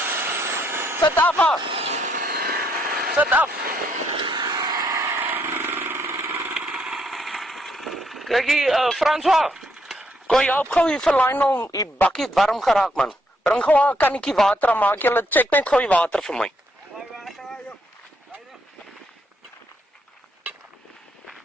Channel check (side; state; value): both; normal; correlation 0.73